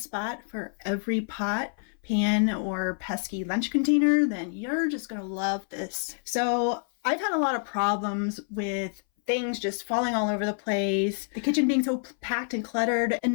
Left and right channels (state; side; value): silent; right; 60 dB below the other